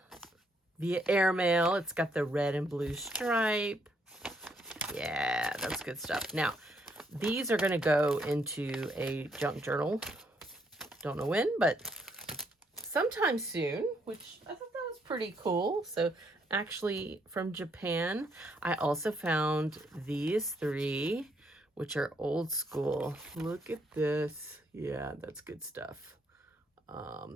Via airmail. It's got the red and blue stripe. Yeah, that's good stuff. Now, these are going to go into a junk journal. Don't know when, but sometime soon, which I thought that was pretty cool. So actually from Japan, I also found these three, which are old school. Look at this. Yeah, that's good stuff.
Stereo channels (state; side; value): normal; both; correlation 0.73